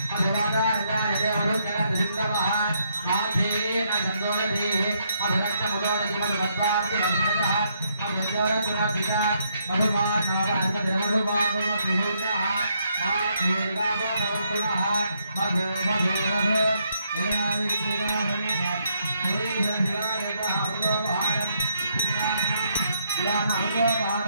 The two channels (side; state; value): both; inverted; correlation -0.74